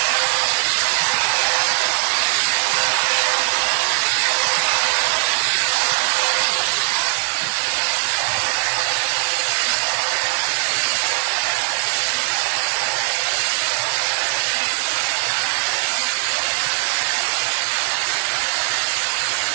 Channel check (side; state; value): left; silent; digital silence